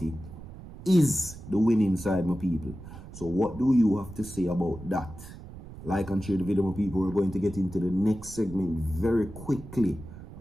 is the winning side, my people. So what do you have to say about that? Like and share the video, my people. We're going to get into the next segment very quickly.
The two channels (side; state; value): right; noise; rumble, 15 dB below the sound